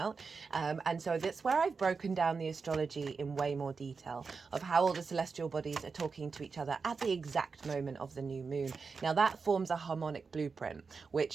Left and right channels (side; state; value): left; quieter; 4.9 dB